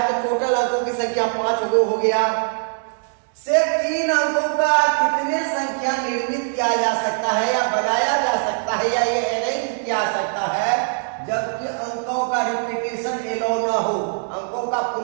तो टोटल अंकों की संख्या 5 हो गया। से 3 अंकों का कितने संख्या निर्मित किया जा सकता है या बनाया जा सकता है या ये अरेंज किया सकता है, जबकि अंकों का रिपीटेशन एलो ना हो, अंकों का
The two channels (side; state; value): left; silent; digital silence